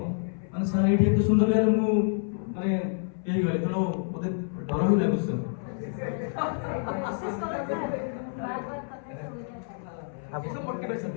ମାନେ ସାର୍ ଏଇଠି ଏତେ ସୁନ୍ଦର ଲାଗିଲା ମୁଁ ମାନେ ହେଇଗଲି ତେଣୁ ମୋତେ ଡର ହିଁ ଲାଗୁଛି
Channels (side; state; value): right; silent; 58 dB below the other